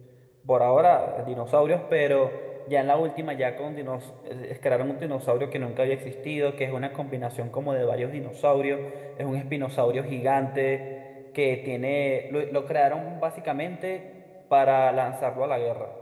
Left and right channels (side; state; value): both; identical; correlation 1.00